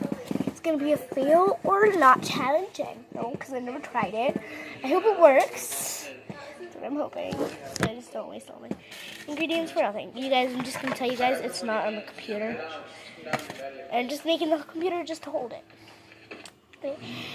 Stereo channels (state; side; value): identical; both; correlation 1.00